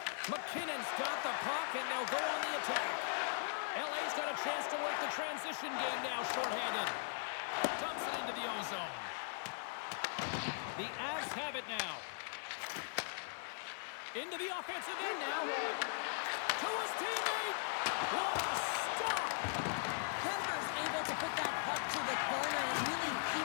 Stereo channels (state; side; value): silent; right; 51 dB below the other